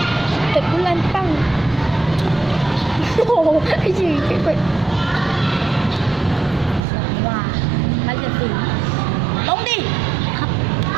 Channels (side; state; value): left; drops out; at 6.9 s